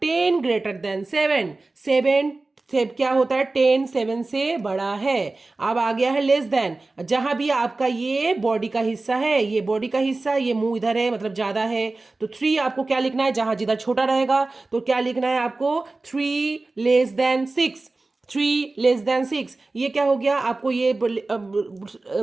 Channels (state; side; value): quieter; left; 3.3 dB